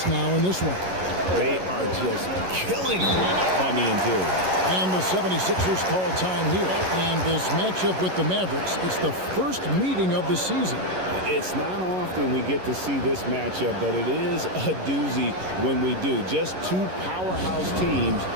now in this one. They are just killing them on the interior. And the 76ers call time here. And this matchup with the Mavericks, it's the first meeting of the season. It's not often we get to see this matchup, but it is a doozy when we do. Just two powerhouse teams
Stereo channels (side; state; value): left; late; 11 ms